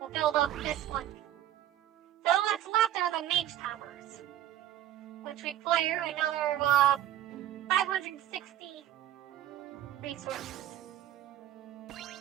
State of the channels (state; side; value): quieter; left; 12.5 dB